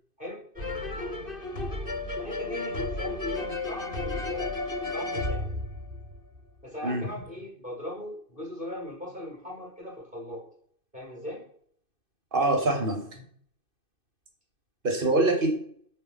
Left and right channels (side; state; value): left; late; 2.5 ms